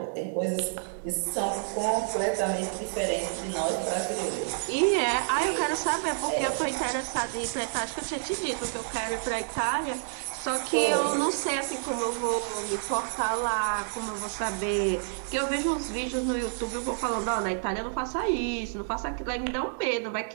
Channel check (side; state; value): left; silent; digital silence